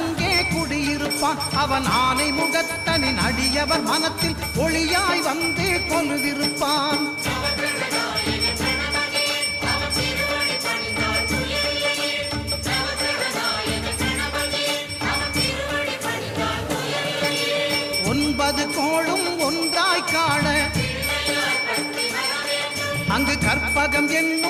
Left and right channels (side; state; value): both; identical; correlation 1.00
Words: குடியிருப்பான். அவன் ஆனை முகத்தனின் அடியவர் மனத்தில் ஒளியாய் வந்து கொலுவிருப்பான். ஒன்பது கோளும் ஒன்றாய் காண அங்கு கற்பகம்